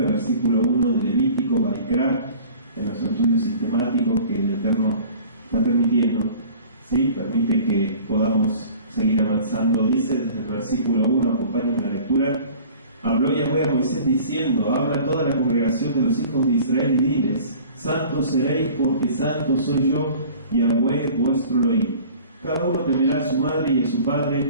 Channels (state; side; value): inverted; both; correlation -0.46